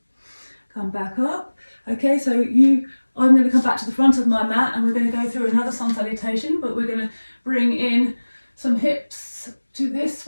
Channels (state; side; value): inverted; both; correlation -1.00